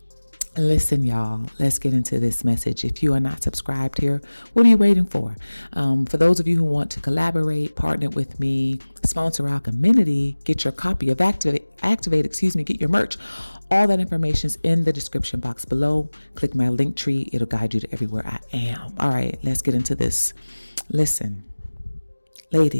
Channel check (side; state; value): both; inverted; correlation -1.00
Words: listen, y'all, let's get into this message. If you are not subscribed here, what are you waiting for? For those of you who want to collaborate, partner with me, sponsor Alcheminity, get your copy of Activate, get your merch. All that information is in the description box below. Click my link tree. It'll guide you to everywhere I am. All right, let's get into this. Listen,